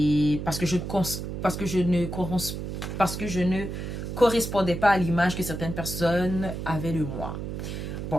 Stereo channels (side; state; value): right; noise; hum, 6 dB below the sound